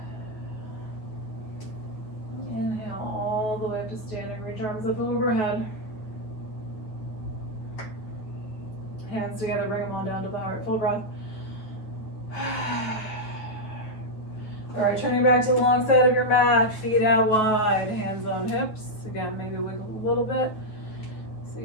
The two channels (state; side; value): late; right; 9.3 ms